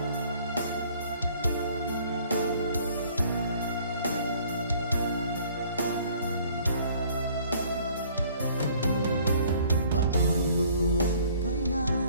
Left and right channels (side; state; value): both; inverted; correlation -0.56